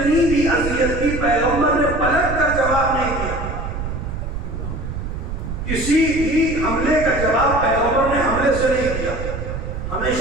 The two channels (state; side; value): noise; right; rumble, 6 dB below the sound